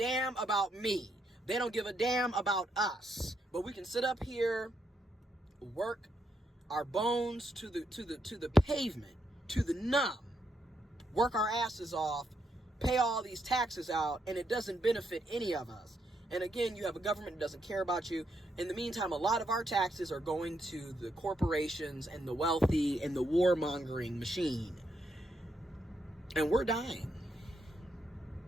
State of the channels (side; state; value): both; normal; correlation 0.78